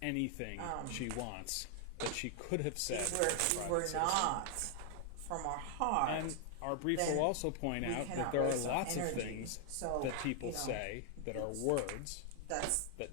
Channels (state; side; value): different; both; correlation 0.00